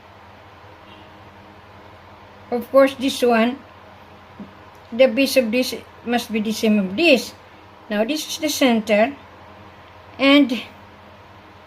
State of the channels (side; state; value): both; identical; correlation 1.00